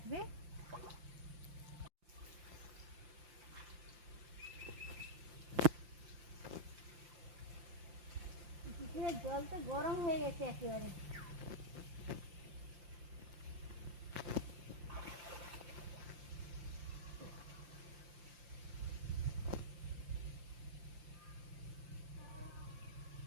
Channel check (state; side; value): late; left; 5.7 ms